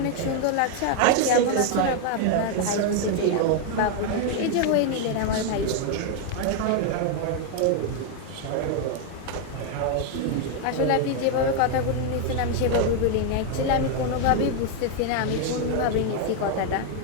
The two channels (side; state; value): both; different; correlation 0.01